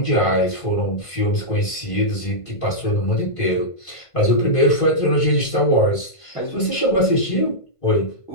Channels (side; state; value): right; late; 1.5 ms